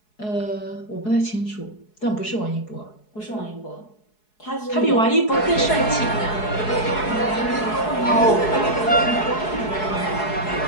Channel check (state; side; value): late; right; 4.7 ms